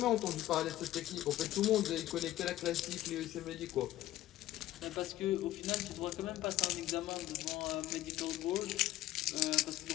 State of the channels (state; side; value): quieter; right; 14.6 dB